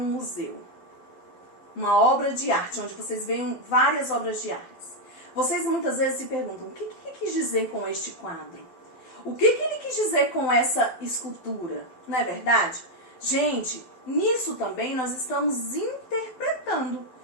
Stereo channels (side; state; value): right; late; 12 ms